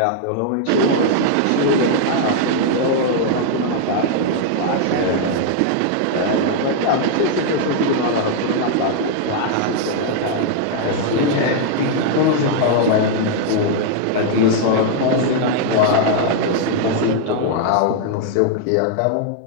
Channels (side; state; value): both; different; correlation 0.00